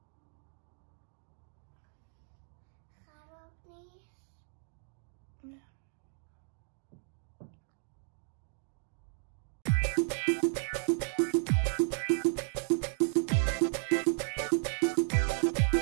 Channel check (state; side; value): silent; left; digital silence